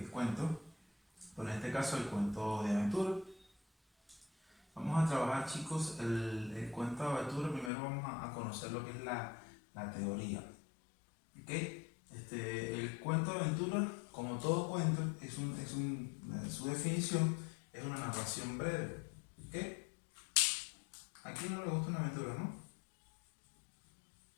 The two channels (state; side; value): drops out; right; at 7.7 s